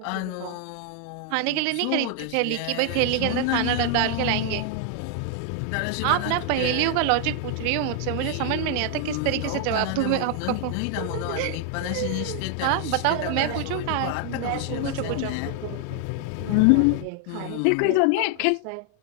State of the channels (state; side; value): different; both; correlation 0.00